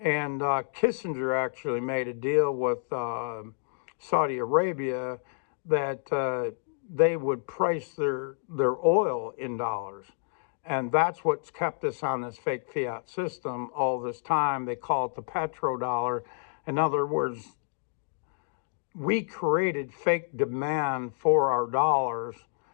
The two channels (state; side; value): silent; right; digital silence